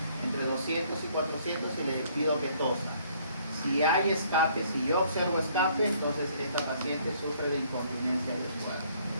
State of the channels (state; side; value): inverted; both; correlation -0.62